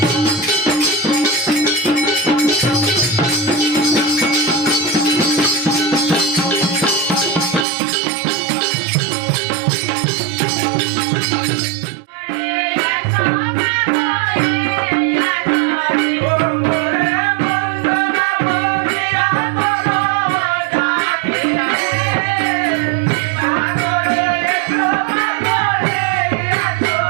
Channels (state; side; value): drops out; left; at 7.7 s